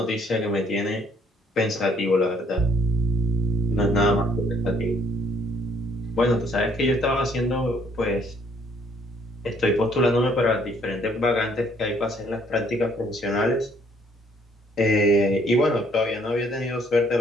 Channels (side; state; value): both; normal; correlation 0.64